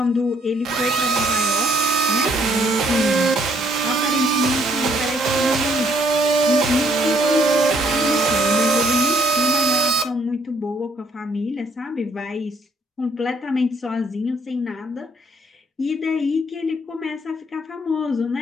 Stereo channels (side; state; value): both; normal; correlation 0.66